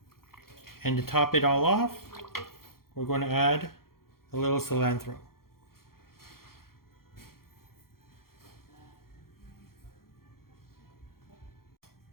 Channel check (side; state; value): right; late; 0.93 ms